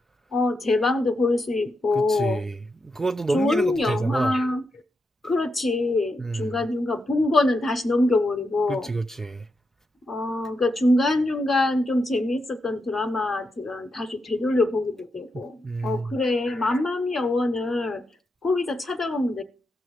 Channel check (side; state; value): both; normal; correlation 0.85